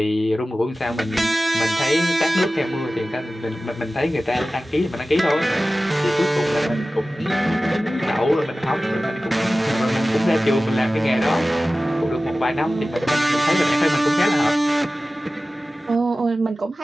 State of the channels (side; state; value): both; normal; correlation 0.96